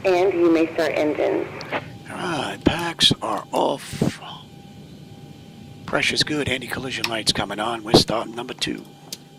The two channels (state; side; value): identical; both; correlation 1.00